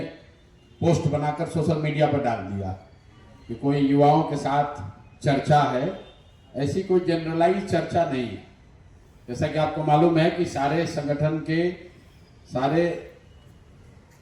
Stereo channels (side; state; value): both; identical; correlation 1.00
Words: पोस्ट बनाकर सोशल मीडिया पर डाल दिया कि कोई युवाओं के साथ चर्चा है। ऐसी कोई जनरलाइज चर्चा नहीं है। जैसा कि आपको मालूम है कि सारे संगठन के सारे